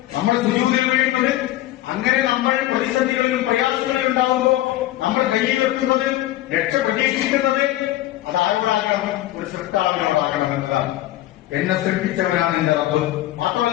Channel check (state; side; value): quieter; right; 15.2 dB